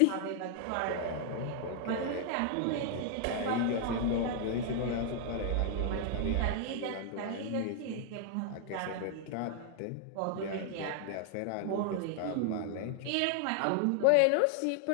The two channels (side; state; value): both; different; correlation 0.00